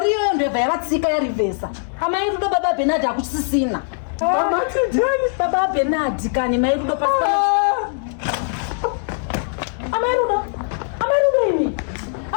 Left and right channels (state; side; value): silent; right; 65 dB below the other